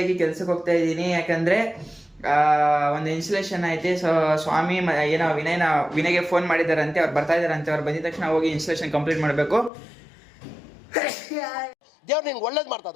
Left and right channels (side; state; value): right; drops out; at 9.7 s